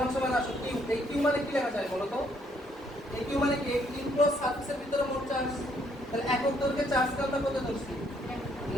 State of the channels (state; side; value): normal; both; correlation 0.69